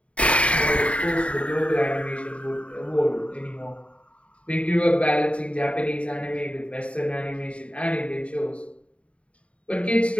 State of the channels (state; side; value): late; right; 0.062 ms